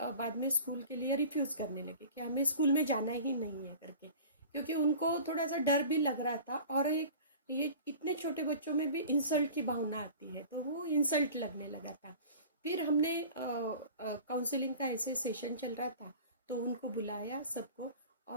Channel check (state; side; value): inverted; both; correlation -0.41